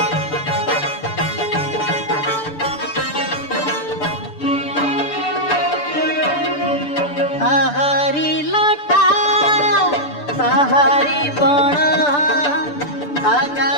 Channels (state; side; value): late; right; 6.9 ms